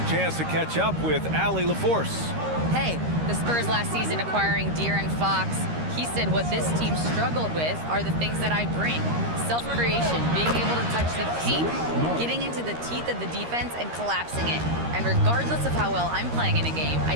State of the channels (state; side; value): late; left; 13 ms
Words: chance to catch up with Allie LaForce. Hey, the Spurs last season acquiring De'Aaron Fox. He said what this team struggled with are the things that I bring. Self-creation, being able to touch the paint, getting into the teeth of the defense and collapsing it. And regardless of how well I'm playing in a game, I